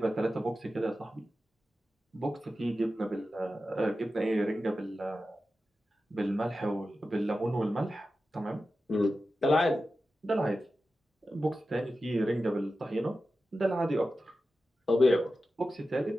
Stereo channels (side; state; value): both; normal; correlation 0.92